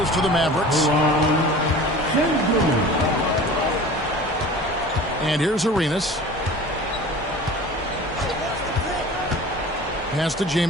to the Mavericks. And here's Arenas. Pass to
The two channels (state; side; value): normal; both; correlation 0.40